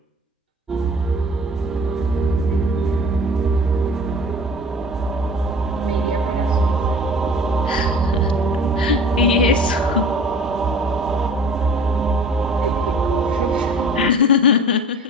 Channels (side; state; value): both; normal; correlation 0.44